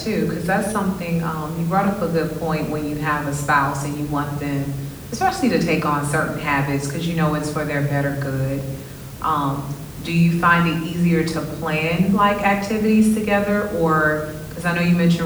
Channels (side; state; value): both; identical; correlation 1.00